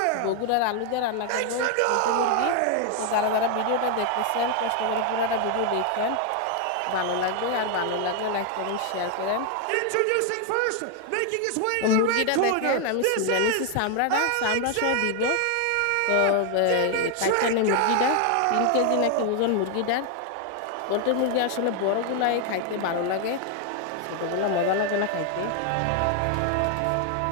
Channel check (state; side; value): different; both; correlation 0.00